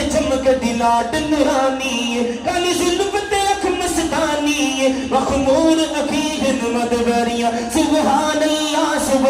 چمک دلاٹ نورانی کالی ظلم تے اکھ مستانی ثانی مخمور عقیل مدبریاں سبحان اللہ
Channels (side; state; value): both; identical; correlation 1.00